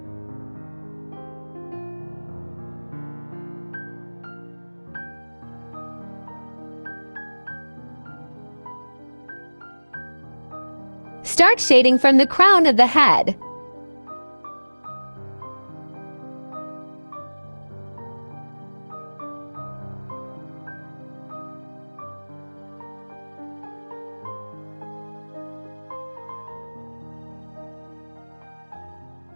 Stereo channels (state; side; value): inverted; both; correlation -1.00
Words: Start shading from the crown of the head.